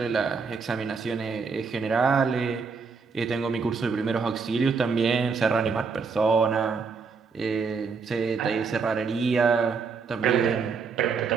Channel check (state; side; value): quieter; left; 5.1 dB